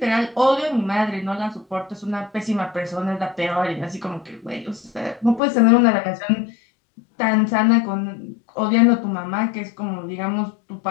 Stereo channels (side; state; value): right; drops out; at 5.4 s